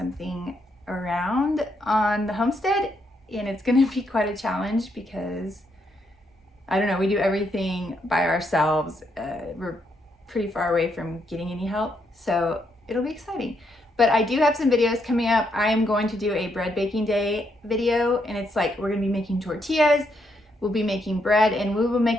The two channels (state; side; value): normal; both; correlation 0.77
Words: around on the homestead, and it's gonna be quite a challenge because I don't know, we do everything by ourselves. We're pretty far away from getting any help, so it'll be exciting. But I do have some videos coming up. I am going to do a bread baking day video, and it's like we're gonna be making tortillas, we'll be making bread, and we will